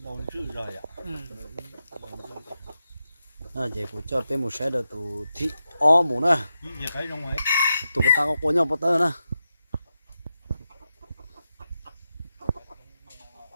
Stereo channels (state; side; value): inverted; both; correlation -0.89